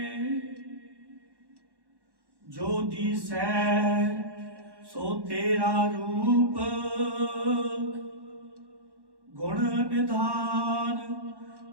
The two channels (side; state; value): left; late; 1.1 ms